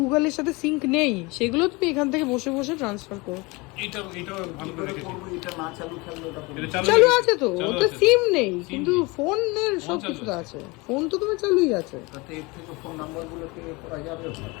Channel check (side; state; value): right; quieter; 25.2 dB